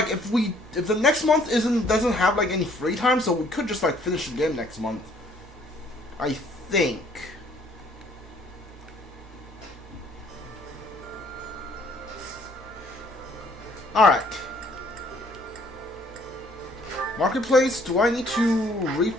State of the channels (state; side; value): normal; both; correlation 0.61